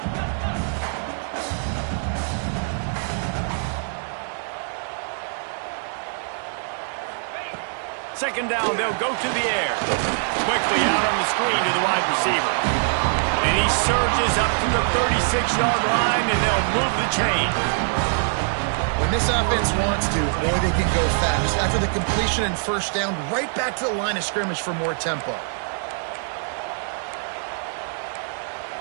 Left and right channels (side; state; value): left; silent; 63 dB below the other